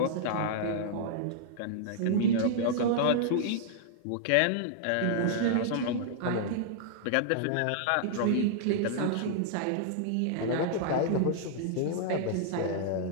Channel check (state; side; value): different; both; correlation -0.01